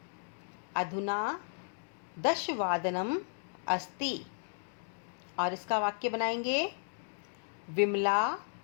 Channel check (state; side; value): silent; right; digital silence